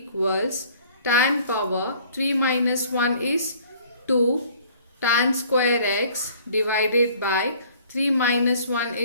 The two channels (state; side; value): inverted; both; correlation -0.54